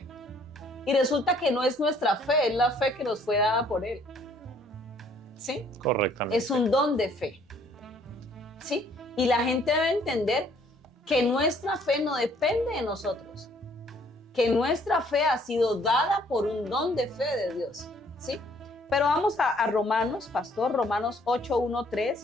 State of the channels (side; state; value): both; normal; correlation 0.62